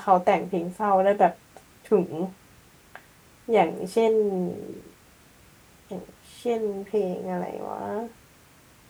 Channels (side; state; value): both; identical; correlation 1.00